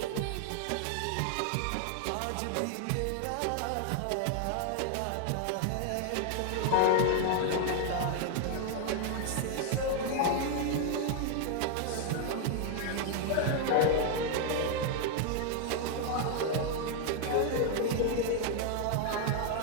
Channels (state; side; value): different; both; correlation 0.00